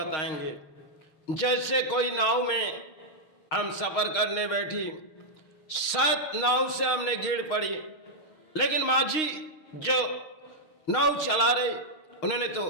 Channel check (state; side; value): late; right; 6.4 ms